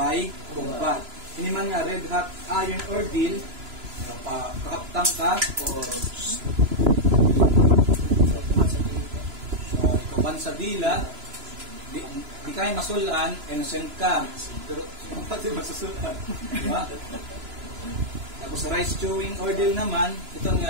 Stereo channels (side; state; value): left; late; 2.9 ms